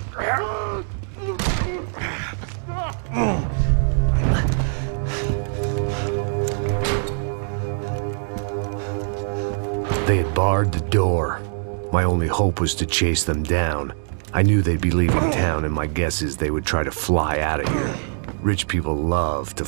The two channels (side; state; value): left; silent; 62 dB below the other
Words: They had barred the door. My only hope was to chase them down. I knew they'd be leaving town, and my guess is they would try to fly out of here. Rich people love to